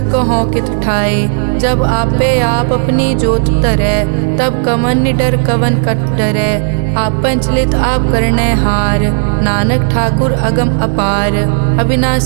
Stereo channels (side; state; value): left; silent; 70 dB below the other